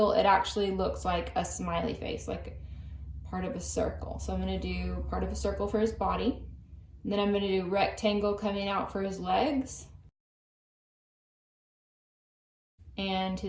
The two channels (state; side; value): identical; both; correlation 1.00